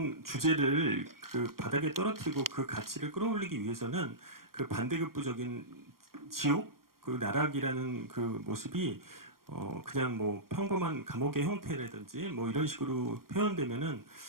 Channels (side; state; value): left; late; 0.92 ms